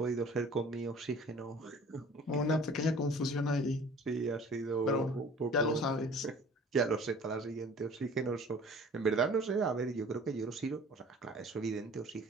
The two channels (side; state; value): both; normal; correlation 0.48